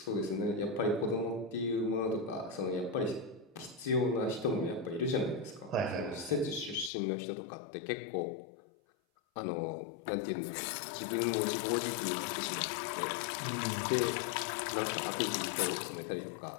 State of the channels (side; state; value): right; drops out; at 6.9 s